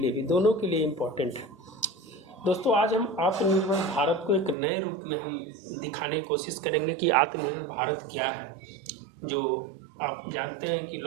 भी, दोनों के लिए इम्पॉर्टेंट है दोस्तों। आज हम आत्मनिर्भर भारत को एक नए रूप में हम दिखाने की कोशिश करेंगे कि आत्मनिर्भर भारत क्या है। जो आप जानते हैं कि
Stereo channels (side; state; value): left; drops out; at 4.5 s